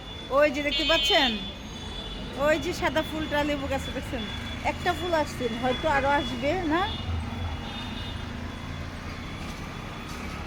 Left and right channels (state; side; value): identical; both; correlation 1.00